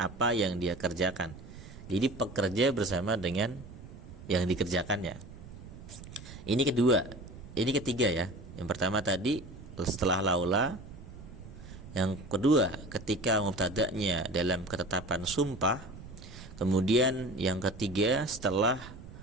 yang dia kerjakan. Jadi pekerja bersama dengan yang dikerjakannya. Ini ketiga ya. Yang pertama tadi setelah laula. Yang kedua ketika mubtada'nya dalam ketetapan sumpah. Kemudian yang ketiga setelah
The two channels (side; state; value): right; noise; rumble, 15 dB below the sound